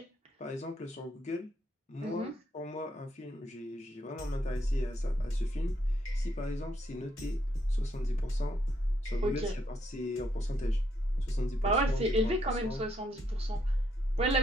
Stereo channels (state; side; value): normal; both; correlation 0.75